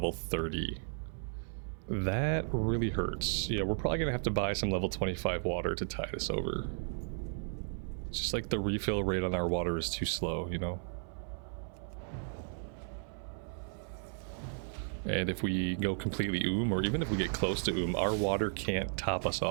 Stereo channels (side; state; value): left; silent; 55 dB below the other